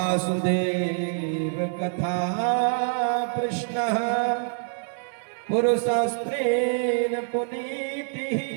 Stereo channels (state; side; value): silent; left; 61 dB below the other